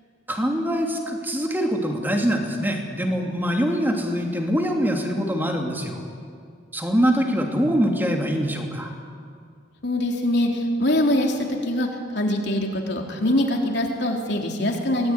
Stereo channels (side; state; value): both; normal; correlation 0.69